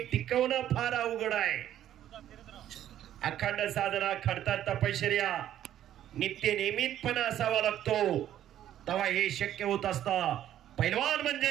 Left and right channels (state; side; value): quieter; left; 11.6 dB